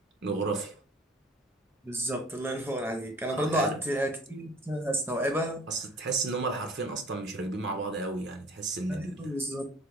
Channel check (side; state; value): both; normal; correlation 0.49